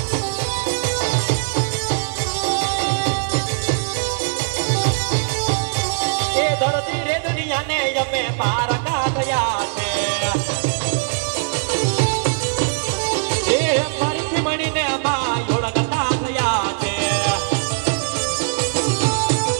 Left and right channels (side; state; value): left; silent; digital silence